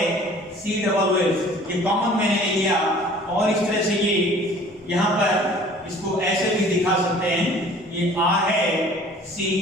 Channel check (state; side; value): normal; both; correlation 0.49